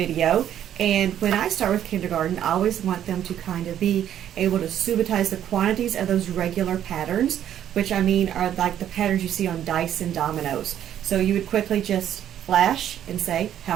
and when I start with kindergarten I always want them to kind of be able to subitize the quantities of those regular patterns, which I mean are like the patterns you see on dice and dominoes. So you would quickly just flash and say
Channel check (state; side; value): quieter; left; 10.6 dB